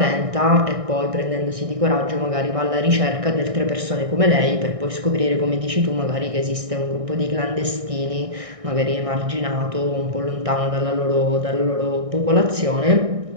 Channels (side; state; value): left; late; 1.6 ms